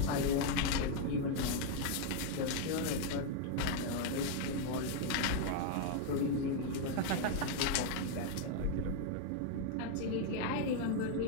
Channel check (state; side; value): different; both; correlation 0.00